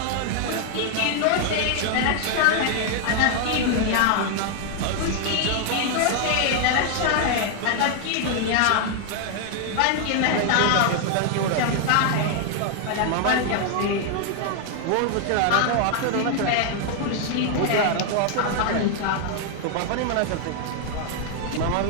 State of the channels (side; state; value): both; different; correlation 0.00